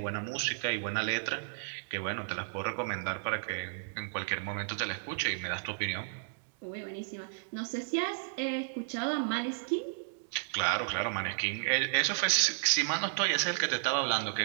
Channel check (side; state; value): left; silent; digital silence